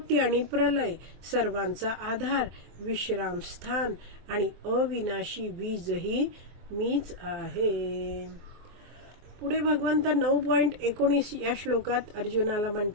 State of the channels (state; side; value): late; left; 24 ms